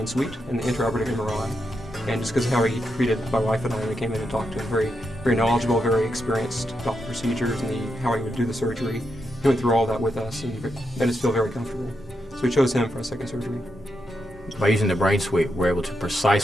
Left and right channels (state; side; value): normal; both; correlation 0.83